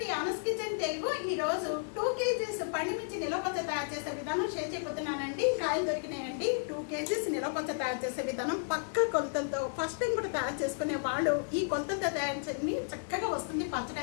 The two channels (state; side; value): silent; right; digital silence